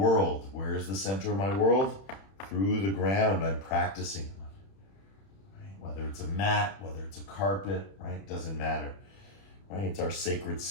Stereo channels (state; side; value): late; right; 31 ms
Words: Where is the center of my world? Through the ground I'm practicing on, right? Whether it's a mat, whether it's a carpet, right? Doesn't matter, right? It's our sacred